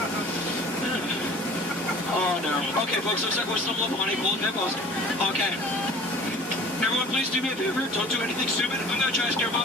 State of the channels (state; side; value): normal; both; correlation 0.45